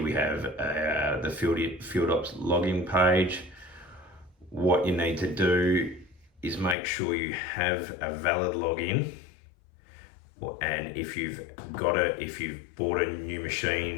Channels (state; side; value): drops out; right; at 6.8 s